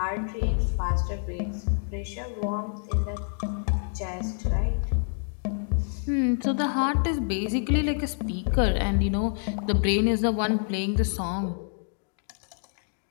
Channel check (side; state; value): right; silent; 60 dB below the other